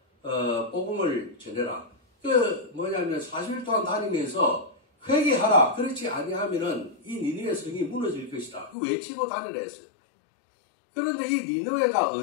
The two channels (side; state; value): right; drops out; at 8.8 s